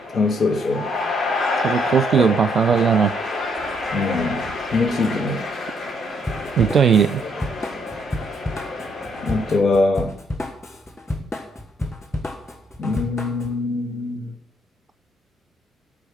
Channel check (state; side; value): normal; both; correlation 0.71